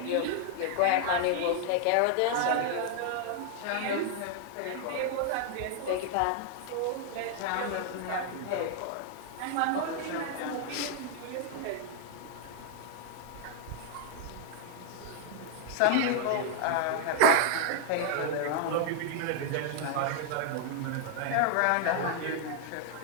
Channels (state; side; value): different; both; correlation 0.00